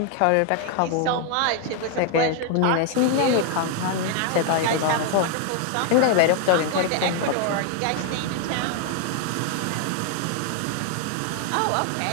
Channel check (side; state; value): both; different; correlation 0.00